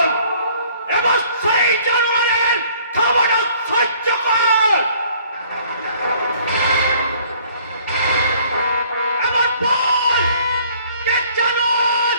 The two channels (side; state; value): both; inverted; correlation -0.57